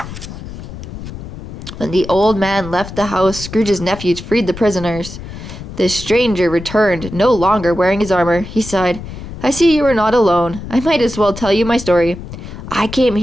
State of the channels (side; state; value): left; noise; rumble, 11 dB below the sound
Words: When the old man left the house, Scrooge's nephews freed the prisoners. The stranger returned, no longer wearing his armor. He sighed. "I see you are not alone. I might as well tell you my story. I came